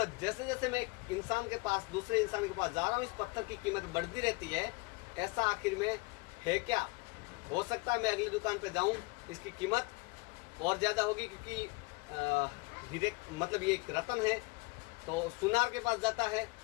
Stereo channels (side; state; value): right; quieter; 26.4 dB